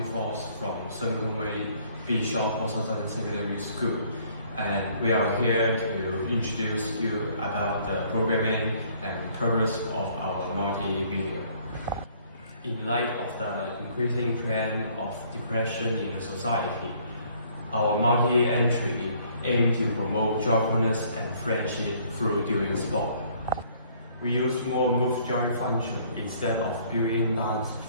from圣公会莫寿增Secondary School, and we are here to introduce you about the programming and purpose of our multi-video. In light of the increasing trend of depression in the society, our multi-entry aims to promote joyfulness and friendship through doing sport. We use more move joy function instead of built-in dance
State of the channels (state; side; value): inverted; both; correlation -0.61